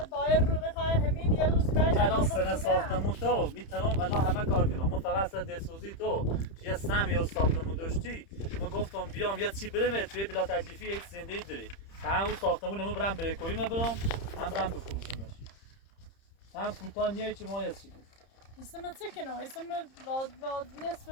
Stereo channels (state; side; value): late; right; 30 ms